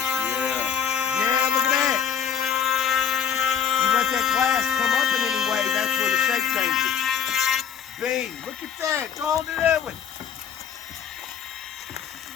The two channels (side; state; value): right; quieter; 8.0 dB